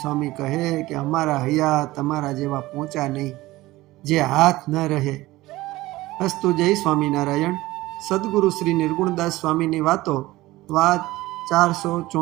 સ્વામી કહે કે અમારા હૈયા તમારા જેવા પહોંચ્યા નહીં, જે હાથ ન રહે. અસ્તુ. જય સ્વામિનારાયણ. સદગુરુ શ્રી નિર્ગુણદાસ સ્વામીની વાત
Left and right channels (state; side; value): quieter; left; 18.3 dB